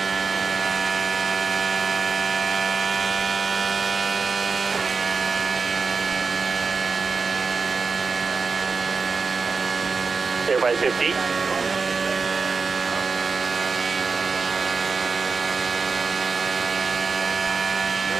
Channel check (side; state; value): left; quieter; 4.7 dB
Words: Clear by 15.